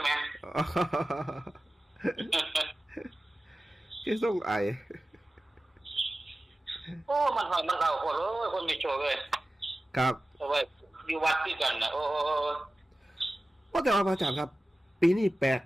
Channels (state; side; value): normal; both; correlation 0.95